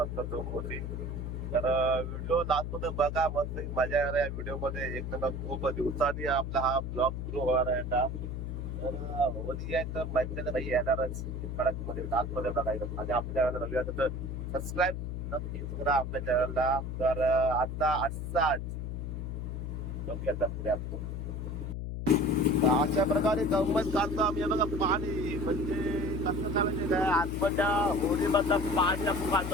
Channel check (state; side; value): noise; left; hum, 4 dB below the sound